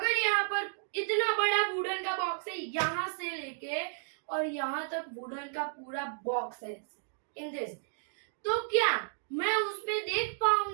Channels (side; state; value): left; silent; digital silence